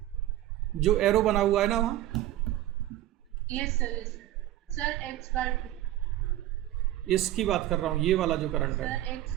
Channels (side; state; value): left; quieter; 14.2 dB